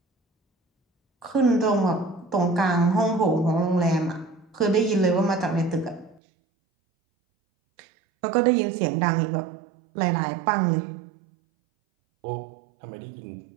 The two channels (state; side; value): drops out; left; at 6.2 s